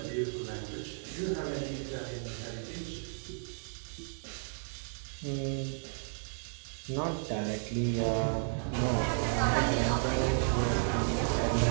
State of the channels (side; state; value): left; silent; digital silence